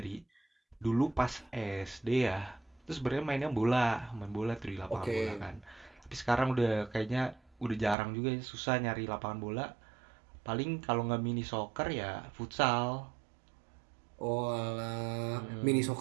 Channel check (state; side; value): drops out; left; at 8.0 s